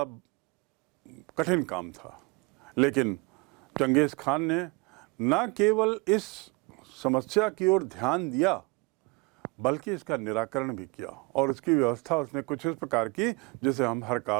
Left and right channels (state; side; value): quieter; left; 28.1 dB